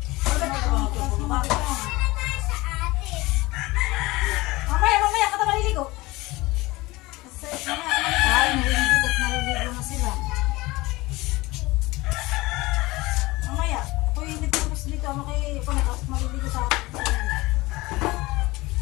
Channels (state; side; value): quieter; right; 21.1 dB